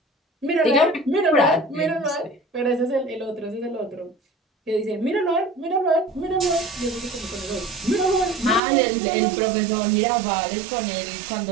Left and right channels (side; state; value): left; drops out; at 8.6 s